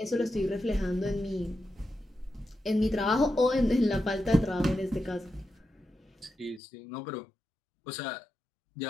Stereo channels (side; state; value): right; drops out; at 6.6 s